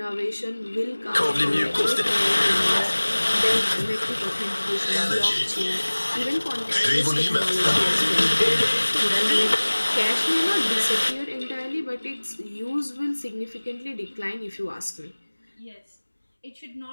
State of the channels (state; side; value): inverted; both; correlation -1.00